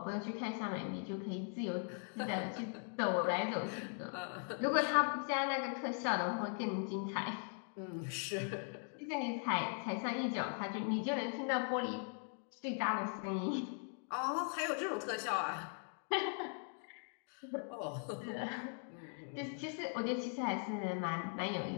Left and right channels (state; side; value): silent; right; 51 dB below the other